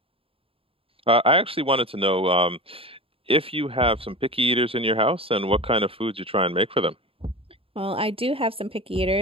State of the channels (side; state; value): left; late; 0.27 ms